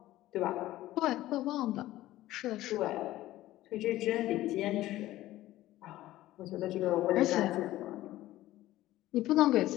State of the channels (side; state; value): right; quieter; 15.5 dB